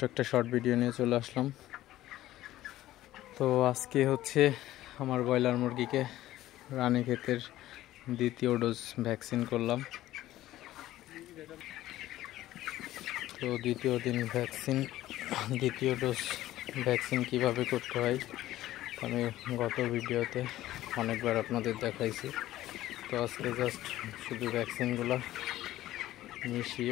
একটা শর্ট ভিডিও নিয়ে চলে আসলাম। তো আজকে হচ্ছে আমার ব্রয়লার মুরগিকে রানীক্ষেতের দ্বিতীয় ডোজ ভ্যাকসিন করলাম। তো দ্বিতীয় ডোজ ভ্যাকসিন কিভাবে করতে হয় আমি গত ভিডিওতে অনেকবার আপনাদের দেখাইছি। তো আজকে জাস্ট শুধু ভ্যাকসিনগুলো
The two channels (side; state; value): right; quieter; 14.8 dB